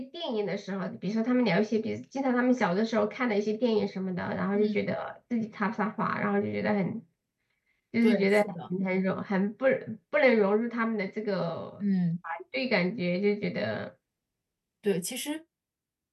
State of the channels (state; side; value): identical; both; correlation 1.00